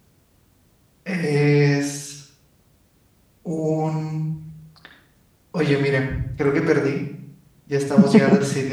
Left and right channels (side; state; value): both; identical; correlation 1.00